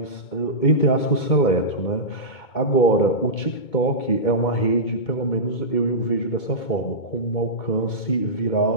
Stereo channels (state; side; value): late; right; 2.2 ms